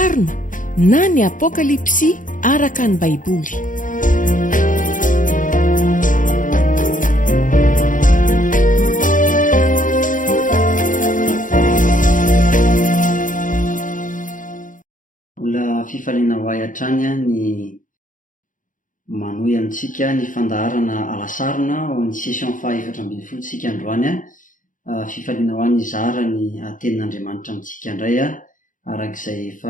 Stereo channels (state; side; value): late; right; 0.38 ms